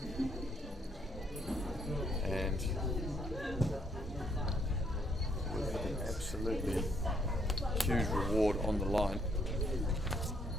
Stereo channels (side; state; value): both; normal; correlation 0.70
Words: and with an absolutely huge reward on the line.